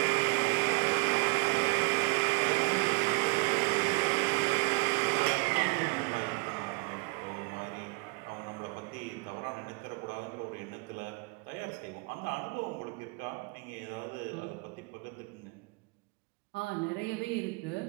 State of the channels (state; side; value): quieter; left; 27.5 dB